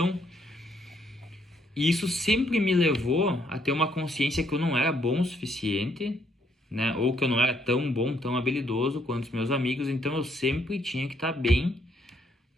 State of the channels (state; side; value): normal; both; correlation 0.71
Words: E isso sempre me levou a ter uma consciência que eu não era bom o suficiente, né? Ou que eu não era tão bom, tão habilidoso quanto os meus amigos. Então eu sempre tinha que estar bem